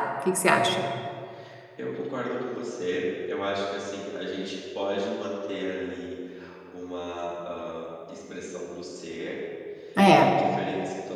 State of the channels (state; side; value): identical; both; correlation 1.00